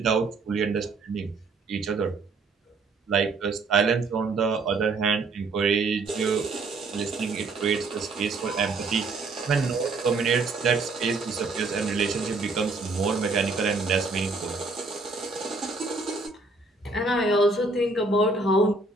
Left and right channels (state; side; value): quieter; left; 3.6 dB